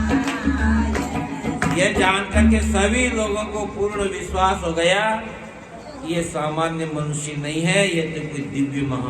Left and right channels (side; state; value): both; identical; correlation 1.00